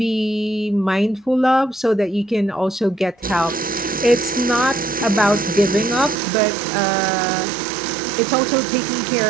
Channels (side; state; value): left; drops out; at 6.2 s